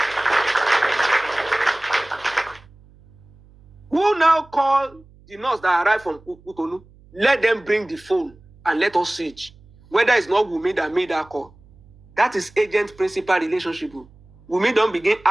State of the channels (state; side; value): noise; right; hum, 27 dB below the sound